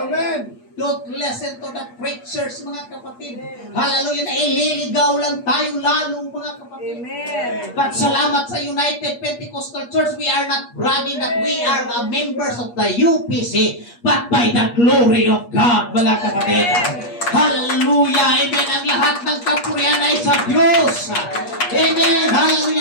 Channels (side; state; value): right; late; 8.4 ms